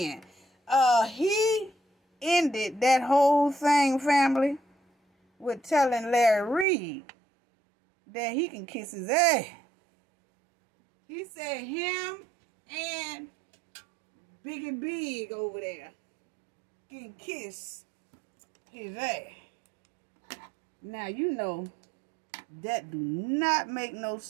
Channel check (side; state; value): left; drops out; at 6.7 s